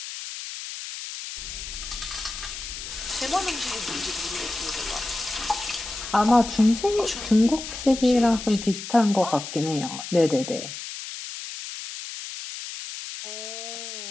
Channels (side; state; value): left; noise; hiss, 9 dB below the sound